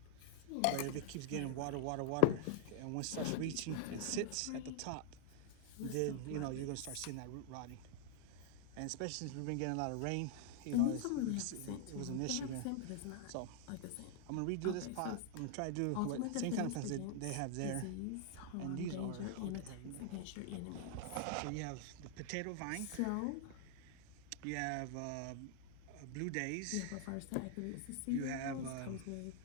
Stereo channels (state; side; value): different; both; correlation -0.01